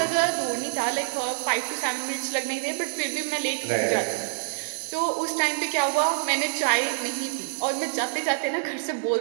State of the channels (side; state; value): left; silent; digital silence